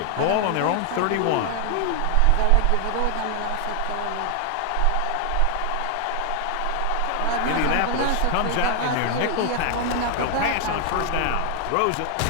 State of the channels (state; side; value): different; both; correlation 0.00